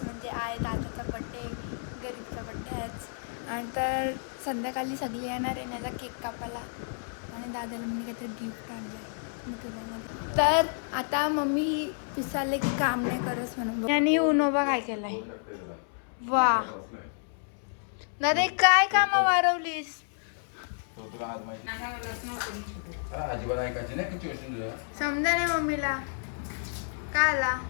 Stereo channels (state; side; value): silent; right; 58 dB below the other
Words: म्हणजे आहे दादाचा बड्डे, गरीबचा बड्डे आहेच. आणि तर संध्याकाळी सगळी येणार आहे माझा केक कापायला. आणि दादाला मी काहीतरी गिफ्ट आणलं. तर आता मम्मी विचारले की काम नाही करस म्हणून. आणि उनोबा काय केलाय. वा दादा काय काम वारवलीस. समजा नाही मम्मीला काय आला.